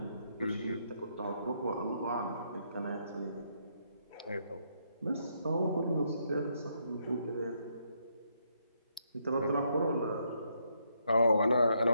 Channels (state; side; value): inverted; both; correlation -0.75